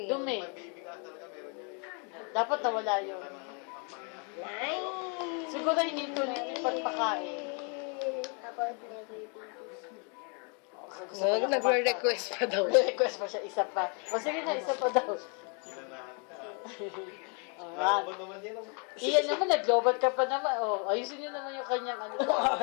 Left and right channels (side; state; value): right; quieter; 36.9 dB